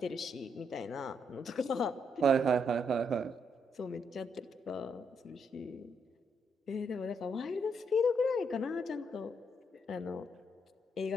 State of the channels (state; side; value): normal; both; correlation 0.76